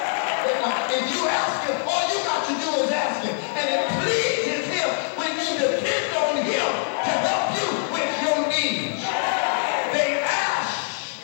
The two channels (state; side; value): silent; right; digital silence